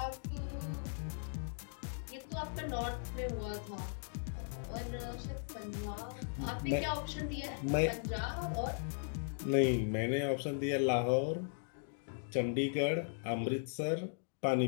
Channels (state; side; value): silent; right; digital silence